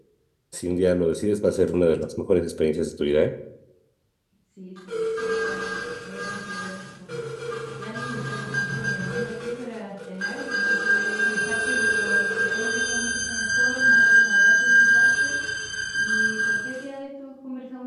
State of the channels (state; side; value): identical; both; correlation 1.00